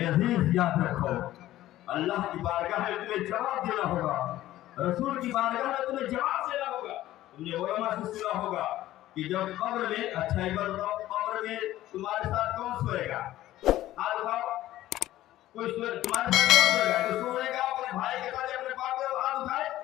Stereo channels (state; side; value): quieter; right; 14.7 dB